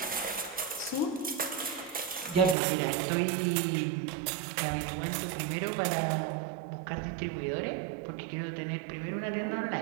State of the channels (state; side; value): drops out; left; at 2.6 s